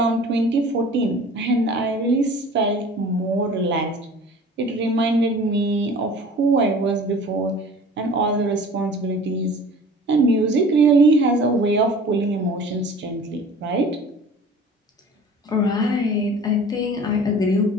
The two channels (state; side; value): normal; both; correlation 0.44